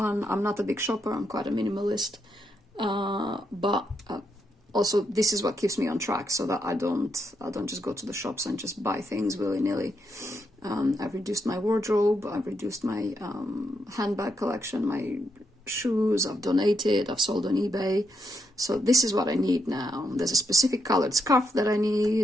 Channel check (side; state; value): both; normal; correlation 0.80